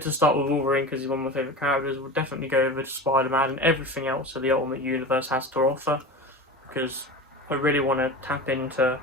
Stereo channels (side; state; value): both; normal; correlation 0.31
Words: to start with Wolverine because he's one of my favourite characters. We'll definitely go over to Spider-Man and everything else that the Ultimate Universe has to offer, because I really want to tap into